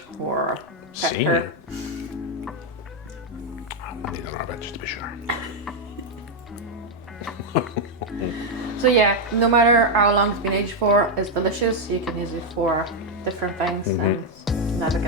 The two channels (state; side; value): normal; both; correlation 0.01